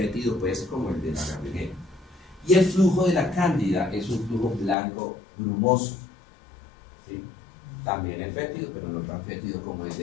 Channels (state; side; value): drops out; right; at 4.8 s